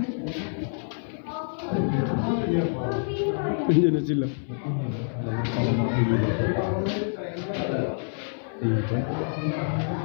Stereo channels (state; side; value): silent; right; 60 dB below the other